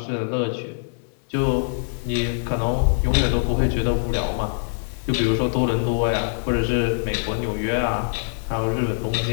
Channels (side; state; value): right; silent; 58 dB below the other